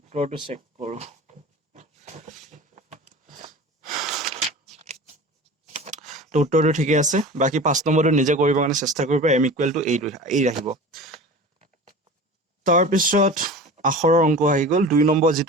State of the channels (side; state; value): both; normal; correlation 0.35